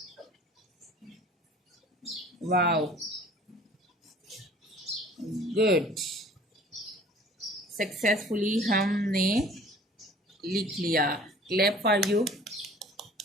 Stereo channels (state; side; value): normal; both; correlation 0.49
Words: Wow, good. सक्सेसफुली हमने लिख लिया, क्लैप फॉर यू।